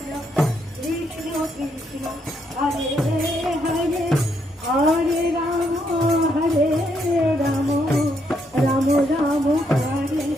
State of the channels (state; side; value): normal; both; correlation 0.76